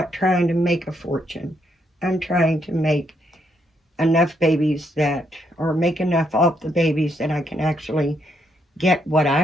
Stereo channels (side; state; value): both; normal; correlation 0.76